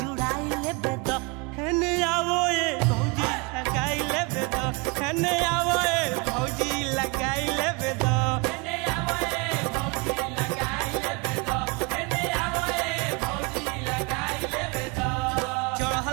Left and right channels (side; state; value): left; quieter; 28.7 dB